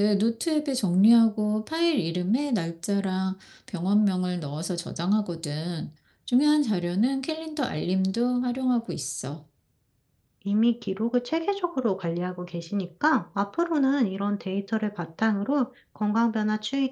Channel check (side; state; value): both; identical; correlation 1.00